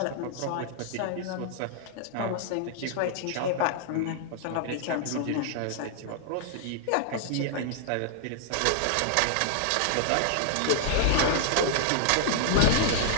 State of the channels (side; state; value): both; different; correlation -0.01